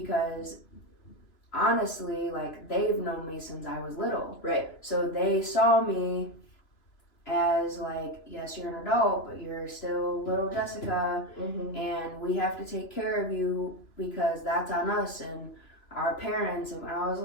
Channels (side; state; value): right; late; 3.0 ms